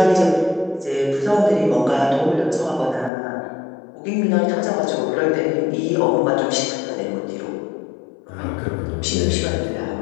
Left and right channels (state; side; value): drops out; right; at 3.1 s